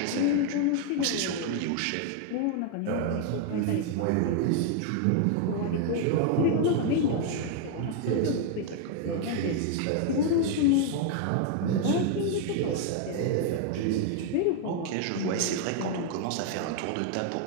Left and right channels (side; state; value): both; different; correlation 0.00